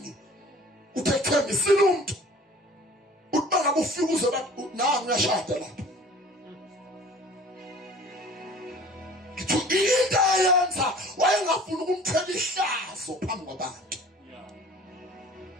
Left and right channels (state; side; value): normal; both; correlation 0.47